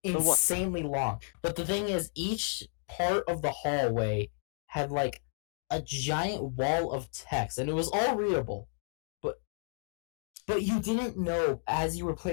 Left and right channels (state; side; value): silent; right; digital silence